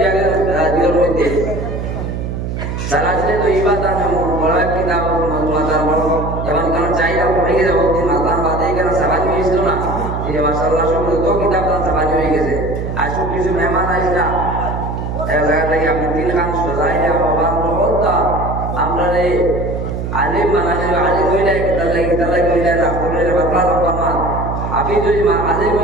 আগে দিনের মধ্যে সারাজে তো ইবাদত আমি বড় কিতাব মাতার বড় এবং কারণ চাইলা পড়ে গেছে বহুদিন মাতার বাদে কেন সাবাজ হয়েছিল না এই মাশাআল্লাহ সব তো কিতাব তার সাবাজ হয়ে গেছে আসুক কিছু মেহমান আইসা এক জায়গা থেকে আপনি 3 খান সজাইলে বাবার বলতা আমরা রে আলিম মানালে আলিম হইলে কিতাব হইলে রাফুলের বাতলা রকমা আপনি যদি আলিম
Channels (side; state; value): right; noise; hum, 4 dB below the sound